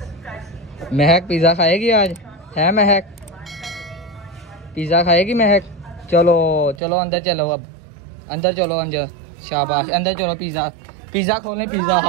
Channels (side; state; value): left; drops out; at 6.8 s